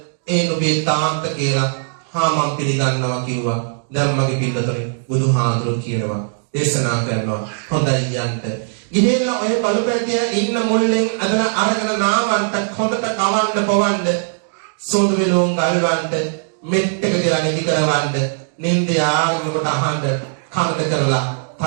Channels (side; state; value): left; silent; digital silence